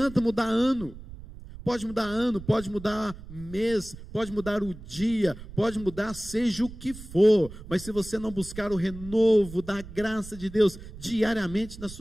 mudar ano, Pode mudar ano, pode mudar mês, pode mudar o dia, pode mudar seja o que for, mas se você não buscar o renovo da graça de Deus diariamente na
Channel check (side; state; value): right; noise; rumble, 14 dB below the sound